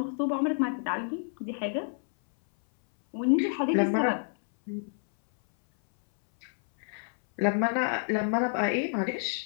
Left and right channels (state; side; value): silent; right; 59 dB below the other